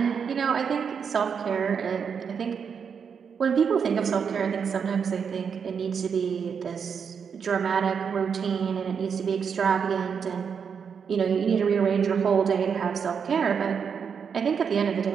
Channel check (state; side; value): quieter; left; 6.7 dB